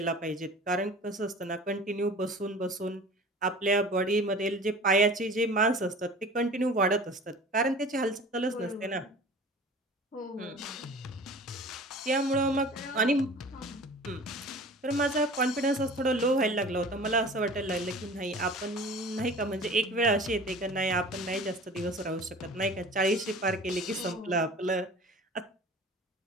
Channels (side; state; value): both; normal; correlation 0.41